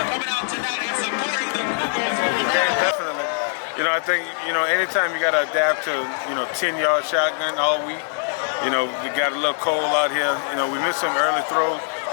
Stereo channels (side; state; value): right; silent; 63 dB below the other